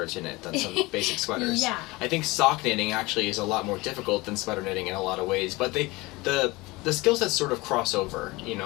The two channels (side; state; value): right; quieter; 22.3 dB